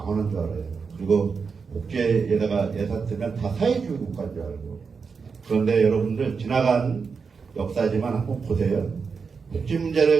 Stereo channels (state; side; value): quieter; left; 5.3 dB